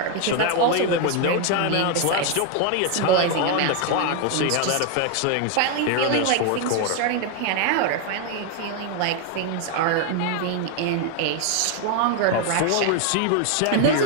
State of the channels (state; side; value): different; both; correlation 0.01